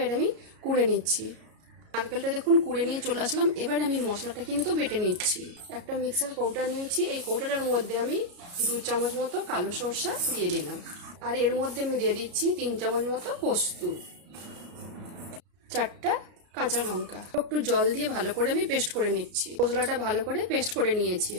আমি কুড়ে নিচ্ছি। নারকেলটা দেখুন কুড়ে নিয়ে চলে আসলাম। এবার আমি মশলাটা কিন্তু বেটে নিচ্ছি। একটা মিক্সার কৌটা নিয়েছি, এই কৌটাটার মধ্যে আমি 2 চামচ মতো কালো সরষা দিয়ে দিলাম। আর এর মধ্যে আমি দিয়ে দিচ্ছি 3 চামচ মতো পোস্ত, 4টা কাঁচা লঙ্কা। একটু জল দিয়ে ভালো করে আমি পেস্ট করে নিচ্ছি। মশলাটা ভালো করে পেস্ট করে নিয়েছি।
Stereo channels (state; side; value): late; left; 34 ms